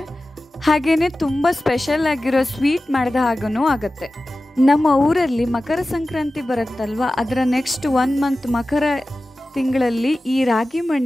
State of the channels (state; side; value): normal; both; correlation 0.95